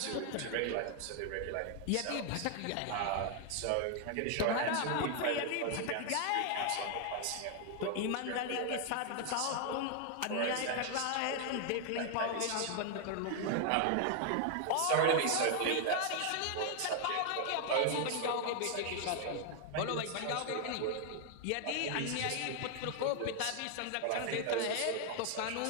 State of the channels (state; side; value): different; both; correlation 0.00